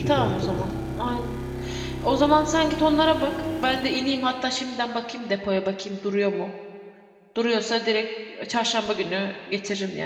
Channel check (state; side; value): identical; both; correlation 1.00